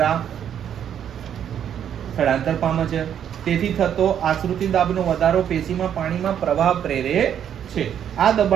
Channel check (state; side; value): quieter; left; 9.3 dB